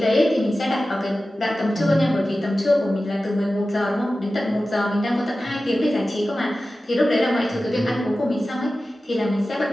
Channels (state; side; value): normal; both; correlation 0.95